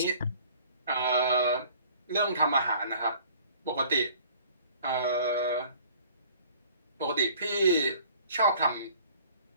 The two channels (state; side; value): inverted; both; correlation -0.52